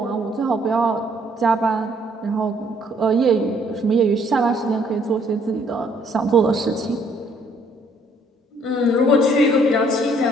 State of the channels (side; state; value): both; normal; correlation 0.64